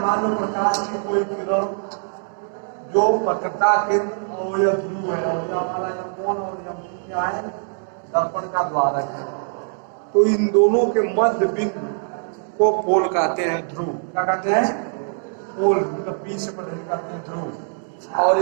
लो प्रकाश की कोई किरण जो वक्रता केंद्र और यह ध्रुव है, और हमारा यह कोण और यह क्या है, दर्पण का द्वारक है, तो इन दोनों के मध्य बिंदु को पोल कहते हैं, ध्रुव। क्या कहते हैं? पोल, मतलब पी से पढ़े कहते हैं ध्रुव। और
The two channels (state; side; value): silent; left; 64 dB below the other